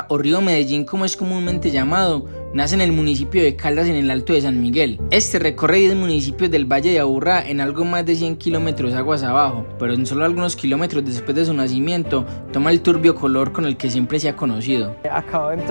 o río Medellín como es comúnmente llamado, nace en el municipio de Caldas en el Alto de San Miguel. Este recorre 10 municipios del Valle de Aburrá en algo más de 100 kilómetros aguas abajo, pero en solo algunos kilómetros después de su nacimiento toma el turbio color con el que siempre se ha conocido. Acabo de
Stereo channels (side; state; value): both; inverted; correlation -1.00